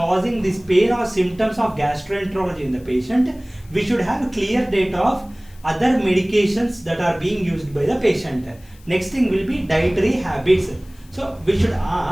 this pain or symptoms of gastroenterology in the patient, we should have clear data of other medications that are being used by the patient. Next thing will be dietary habits. So we should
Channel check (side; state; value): left; noise; hiss, 28 dB below the sound